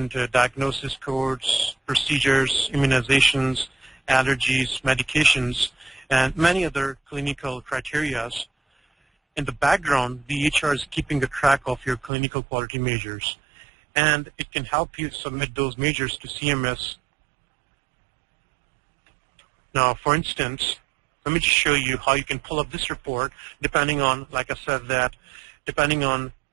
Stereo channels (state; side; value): drops out; left; at 12.1 s